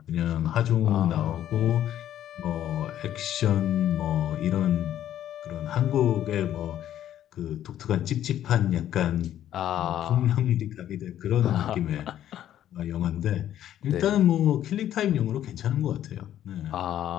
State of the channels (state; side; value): quieter; right; 11.5 dB